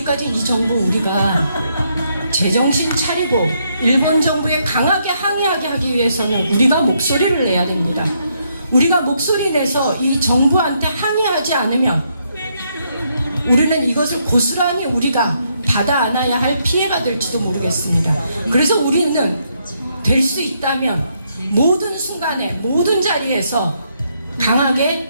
이 정부 우리가 제정신 차리고 일본 정부에 강하게 항의하게 하기 위해서는 우리가 목소리를 내야 됩니다. 우리가 목소리 내서 이 정부한테 항의하지 않으면 우리는 이것을 고스란히 우리가 받아 안아야 할 피해가 될지도 모르겠습니다. 그래서 우리는 될 수 있다면 모든 순간에 모든 자리에서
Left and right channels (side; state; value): both; inverted; correlation -0.75